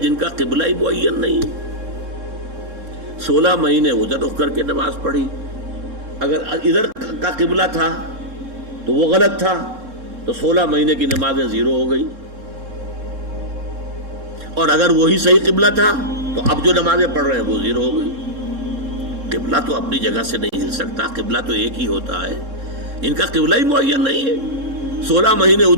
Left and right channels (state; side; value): late; left; 3.7 ms